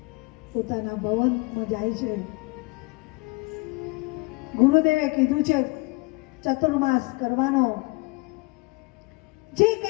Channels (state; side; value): quieter; right; 26.8 dB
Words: પોતાના ભવનમાં જાય છે. ગુરુદેવે કીધું છે ચતુર્માસ કરવાનો. જે